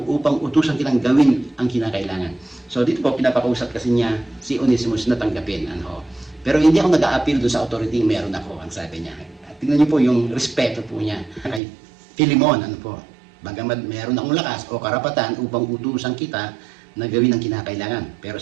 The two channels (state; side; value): drops out; left; at 11.6 s